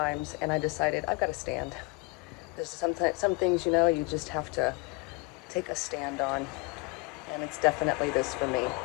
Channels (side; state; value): right; quieter; 28.6 dB